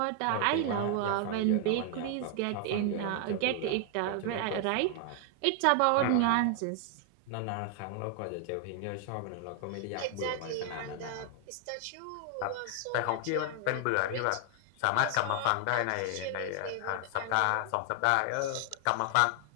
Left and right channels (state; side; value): different; both; correlation 0.00